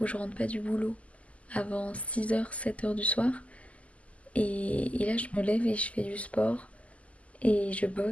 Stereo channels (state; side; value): late; right; 0.067 ms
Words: où je rentre pas du boulot avant 6 heures, 7 heures du soir. Et là je me lève et je fais du sport. Et je